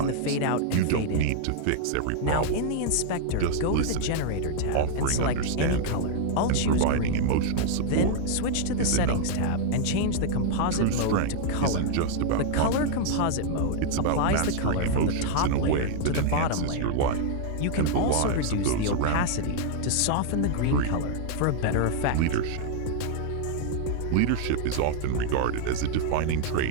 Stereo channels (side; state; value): both; different; correlation -0.01